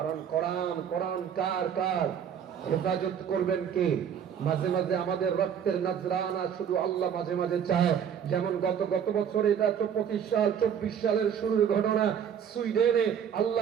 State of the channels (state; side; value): quieter; left; 8.3 dB